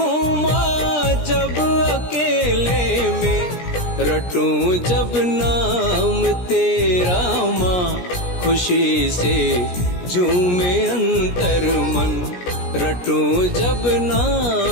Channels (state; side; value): late; right; 17 ms